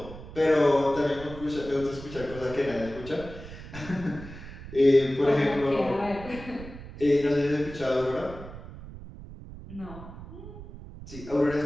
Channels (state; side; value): noise; right; rumble, 14 dB below the sound